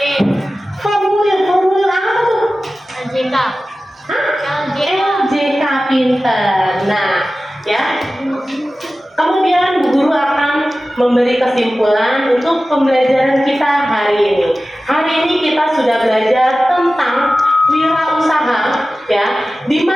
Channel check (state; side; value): normal; both; correlation 0.95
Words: Formulir apa tuh? LJK. Hah? LJK pinter. Nah, ya. Kemudian Bu Guru akan memberi kesimpulan untuk pembelajaran kita hari ini. Hari ini kita sudah belajar tentang wirausaha, ya, di